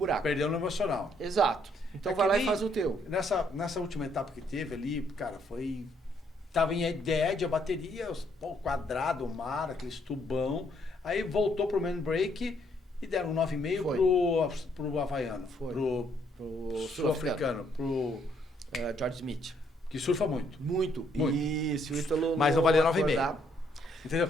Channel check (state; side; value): normal; both; correlation 0.70